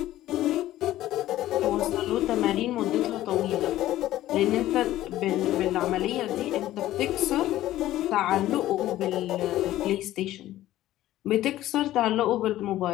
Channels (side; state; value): right; quieter; 14.5 dB